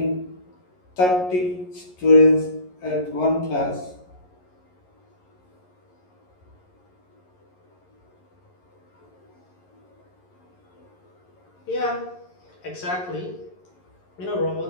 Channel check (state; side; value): late; right; 11 ms